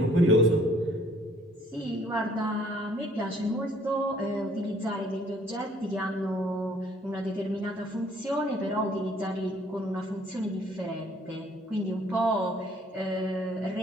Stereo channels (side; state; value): both; normal; correlation 0.60